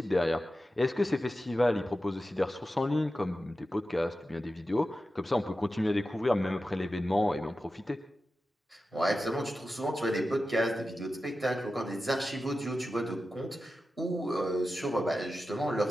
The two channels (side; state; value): both; normal; correlation 0.92